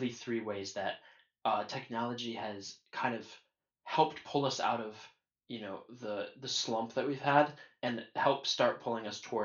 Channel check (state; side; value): identical; both; correlation 1.00